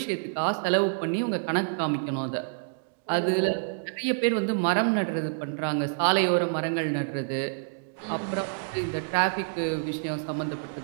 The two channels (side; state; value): left; silent; digital silence